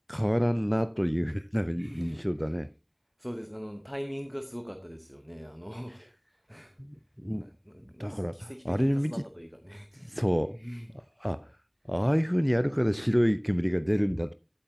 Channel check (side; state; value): both; identical; correlation 1.00